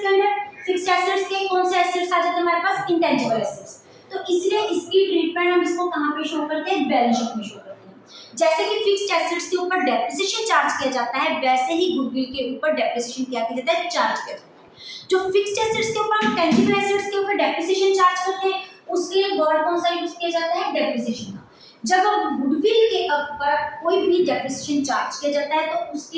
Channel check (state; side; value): identical; both; correlation 1.00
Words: के अंडर। फिक्स्ड एसेट्स के कौन से एसेट्स आ जाते हैं हमारे पास, इंटेंजिबल एसेट्स। तो इसलिए इसकी ट्रीटमेंट हम इसको कहाँ पे शो करते हैं, बैलेंस शीट में शो करते हैं। जैसे कि फिक्स्ड एसेट्स के ऊपर डेप्रिसिएशन चार्ज किया जाता है, वैसे ही गुडविल के ऊपर डेप्रिसिएशन क्या किया जाता है, चार्ज किया जाता है। जो फिक्स्ड एसेट्स के ऊपर हम टेंजिबल एसेट्स के ऊपर डेप्रिसिएशन चार्ज करते हैं, उसके लिए वर्ड कौन सा यूज किया जाता है, डेप्रिसिएशन का। जब हम गुडविल के ऊपर कोई भी डेप्रिसिएशन चार्ज किया जाता है तो